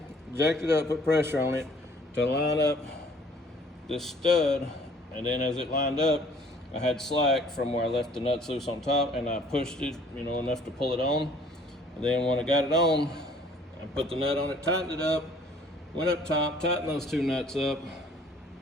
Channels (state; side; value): normal; both; correlation 0.56